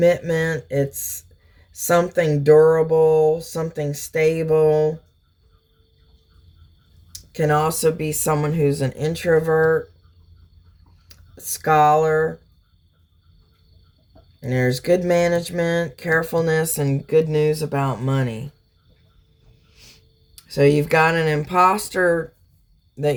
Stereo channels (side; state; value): both; identical; correlation 1.00